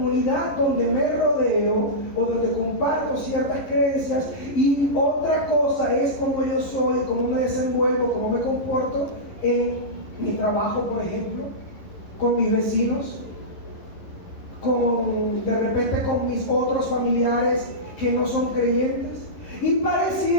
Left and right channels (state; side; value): late; right; 11 ms